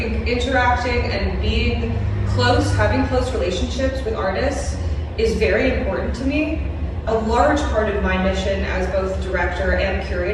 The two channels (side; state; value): both; identical; correlation 1.00